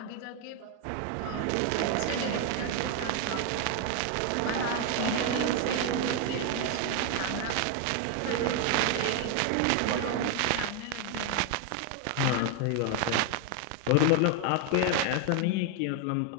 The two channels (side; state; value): both; different; correlation 0.01